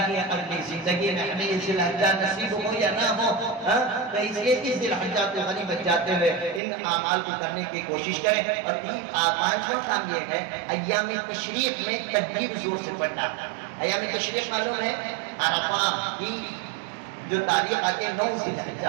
ہے اگلی زندگی میں ہمیں یہ ذی الحجہ نصیب ہو یا نہ ہو، تو اس لیے اس ذی الحجہ کو غنیمت جاتے ہوئے ان اعمال کو کرنے کی کوشش کریں۔ اور 5واں کام یہ ہے ایام تشریق میں تکبیر زور سے پڑھنا۔ ایام تشریق معلوم ہے عرفہ کی جو تاریخ آتے ہیں 9 ذی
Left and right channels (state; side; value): drops out; left; at 6.6 s